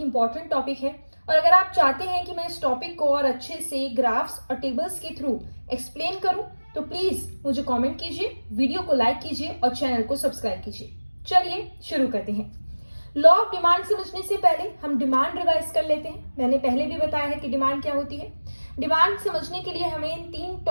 इंपॉर्टेंट टॉपिक है और अगर आप चाहते हैं कि मैं इस टॉपिक को और अच्छे से ग्राफ्स और टेबल्स के थ्रू एक्सप्लेन करूं तो प्लीज मुझे कमेंट कीजिए, वीडियो को लाइक कीजिए और चैनल को सब्सक्राइब कीजिए। चलिए शुरू करते हैं। लॉ ऑफ डिमांड समझने से पहले हम डिमांड रिवाइज कर लेते हैं। मैंने पहले भी बताया है कि डिमांड क्या होती है। डिमांड समझने के लिए हमें इन 3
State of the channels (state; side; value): inverted; both; correlation -1.00